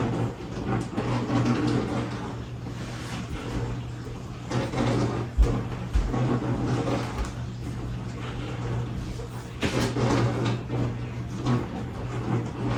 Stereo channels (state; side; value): identical; both; correlation 1.00